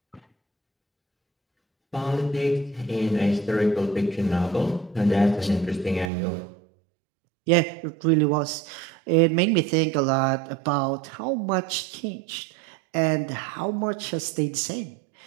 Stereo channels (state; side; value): drops out; left; at 6.1 s